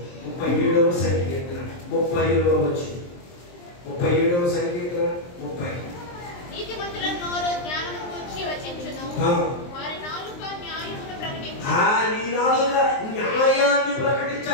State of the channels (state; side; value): late; right; 23 ms